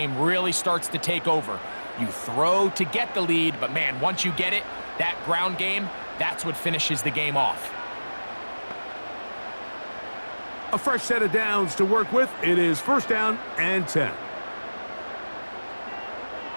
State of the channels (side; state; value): both; inverted; correlation -1.00